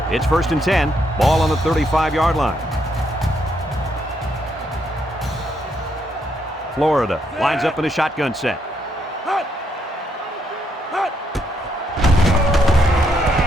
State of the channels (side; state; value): both; normal; correlation 0.76